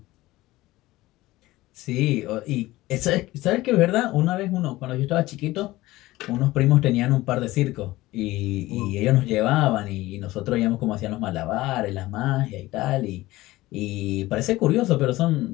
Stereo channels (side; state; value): right; quieter; 18.1 dB